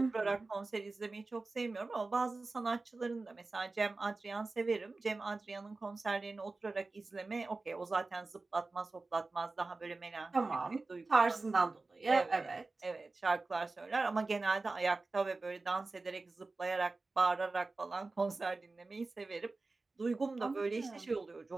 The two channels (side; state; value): left; quieter; 3.5 dB